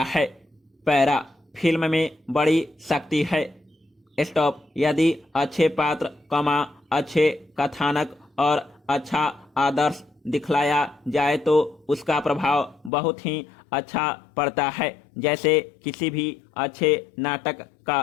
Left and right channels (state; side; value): drops out; right; at 12.9 s